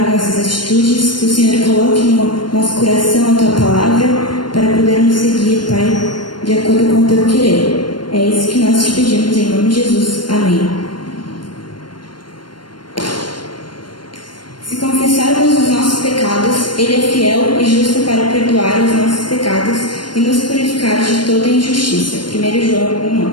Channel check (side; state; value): right; late; 0.72 ms